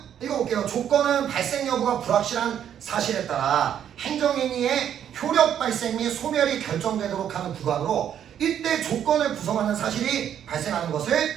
읽어볼게요. 조건은 발생 여부가 불확실한 사실에 따라 행정행위의 효력 발생 및 소멸이 결정되도록 하는 부관으로 이때 조건을 구성하는 사실이 발생하는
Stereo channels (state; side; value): quieter; left; 9.6 dB